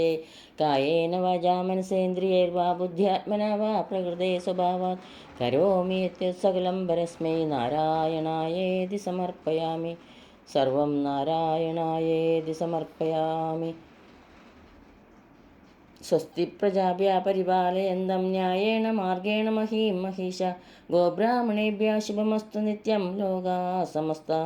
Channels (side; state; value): both; identical; correlation 1.00